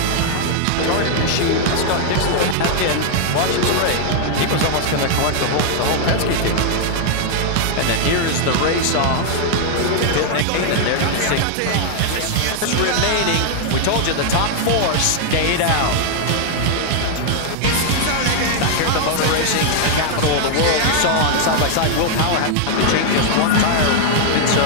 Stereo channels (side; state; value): both; different; correlation 0.00